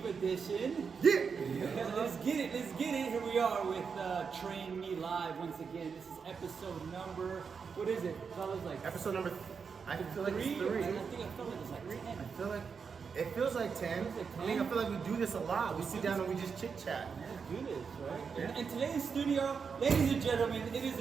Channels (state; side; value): quieter; left; 5.8 dB